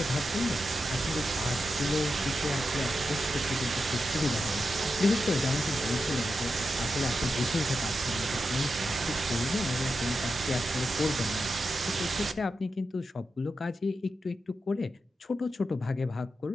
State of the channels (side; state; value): both; normal; correlation 0.88